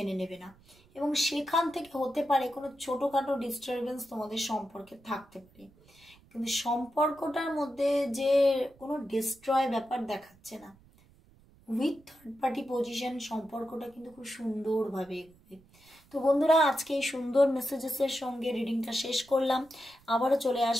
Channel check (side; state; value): right; noise; rumble, 28 dB below the sound